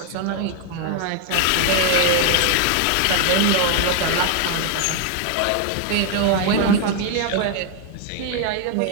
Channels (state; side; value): different; both; correlation 0.00